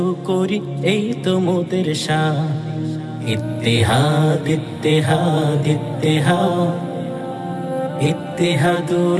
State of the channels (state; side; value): identical; both; correlation 1.00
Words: করি এই তো মোদের শান ইত্তেহাদ ইত্তেহাদ ইত্তেহাদ